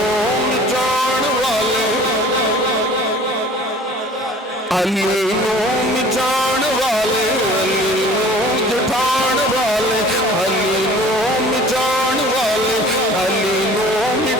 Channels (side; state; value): both; normal; correlation 0.47